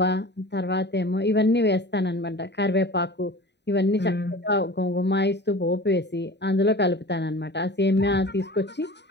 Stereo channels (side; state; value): right; late; 0.50 ms